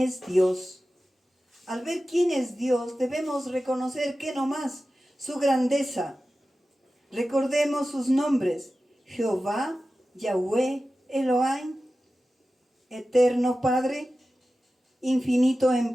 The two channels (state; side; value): normal; both; correlation 0.94